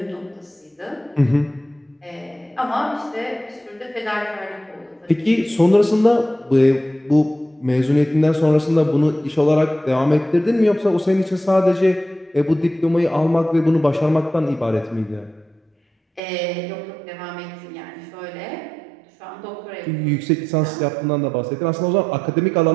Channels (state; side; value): drops out; left; at 16.2 s